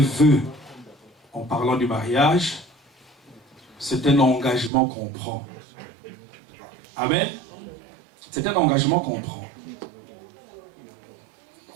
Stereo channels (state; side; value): drops out; left; at 4.7 s